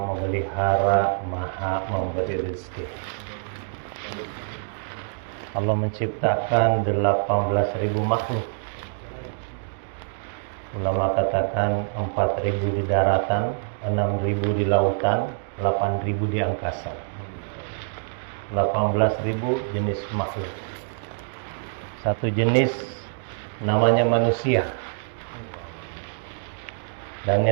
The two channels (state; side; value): silent; left; digital silence